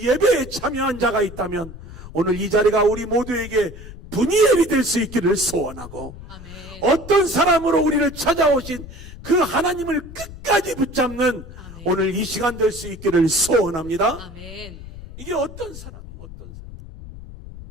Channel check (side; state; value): left; noise; rumble, 14 dB below the sound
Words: 예배에 참여한 자가 있다면 오늘 이 자리가 우리 모두에게 브니엘이 될 수 있기를 소원하고, 아멘. 어떤 사람으로 우리를 찾아오신 그 하나님을 끝까지 붙잡는 아멘. 오늘 이 시간 될 수 있기를 소원합니다. 아멘. 이게 어떤 사람이에요? 어떤 사람?